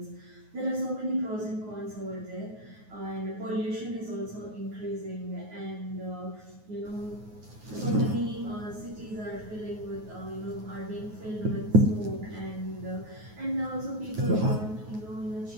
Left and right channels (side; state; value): left; late; 9.4 ms